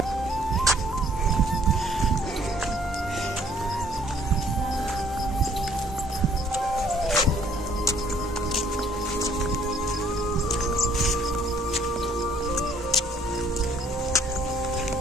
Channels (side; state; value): both; normal; correlation 0.60